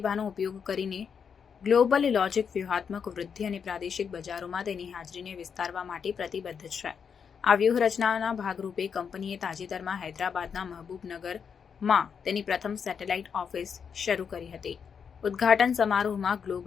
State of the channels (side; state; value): right; quieter; 6.7 dB